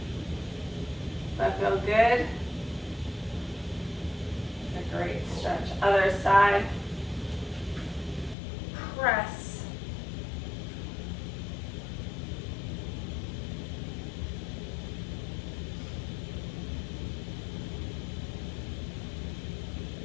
Does that feel good? It's a great stretch. Other side. Press.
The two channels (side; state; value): right; drops out; at 8.3 s